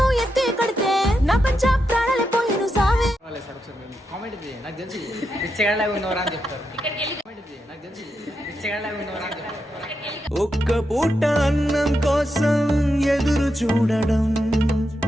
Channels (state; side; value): normal; both; correlation 0.85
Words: ఎత్తి కడితే నా పంచ ప్రాణాలే పోయిను సావే. కామెంట్ ఇది నాకు తెలిసి పిచ్చగాళ్ళగా ఉన్నవరా అని చెప్తారు. కామెంట్ ఇది నాకు తెలిసి పిచ్చగాళ్ళగా ఉన్నవరా అని చెప్తారు. ఒక్క పూట అన్నం కోసం ఎదురు చూడడం.